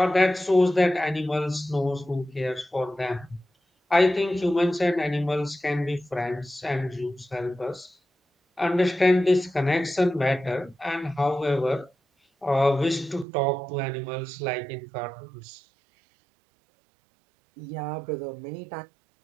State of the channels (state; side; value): drops out; left; at 13.2 s